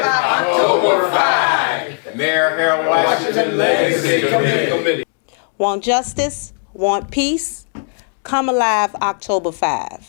Legacy Committee. Want justice? Want peace? Come Alive October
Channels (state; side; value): silent; right; 56 dB below the other